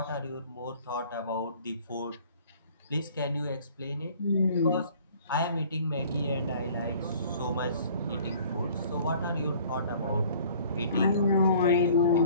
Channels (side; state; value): both; inverted; correlation -0.52